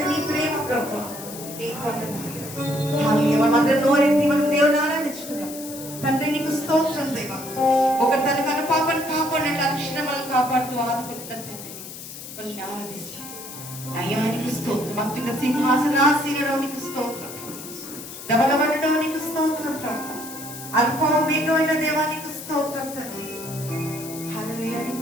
నీ ప్రేమ ప్రభు. నీ వందనాలు. మనందరం నోరెత్తి మనం దేవుని ఆరాధించుకున్నాం. తండ్రి నీకు స్తోత్రం దేవా. ఒకరు తన కన పాపను కాపాడినట్లు అక్షరమలను కాపాడుతూ ఆదుకుంటున్న తండ్రిని వాళ్ళని ఆరాధిస్తాం. అయ్యానికి స్తోత్రం. అత్యున్న సింహాసనాసీనుడవు నీకు స్తోత్రం. ధవలవరుడవు నీకు స్తోత్రం ప్రభు. అల్ఫా ఒమేగమైన దేవానికి స్తోత్రం తండ్రి. హల్లెలూయా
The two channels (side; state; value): left; noise; hiss, 12 dB below the sound